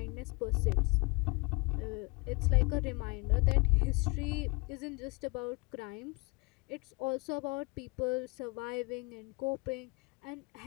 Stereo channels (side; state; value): right; quieter; 28.7 dB